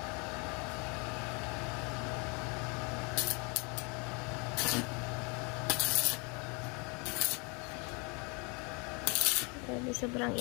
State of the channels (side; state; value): right; quieter; 32.0 dB